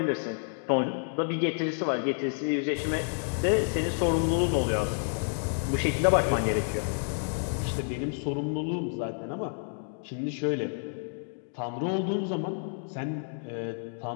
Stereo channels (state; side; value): silent; right; digital silence